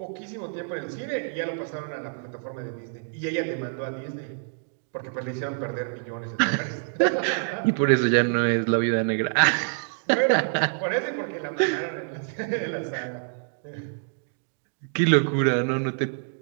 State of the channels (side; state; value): left; silent; digital silence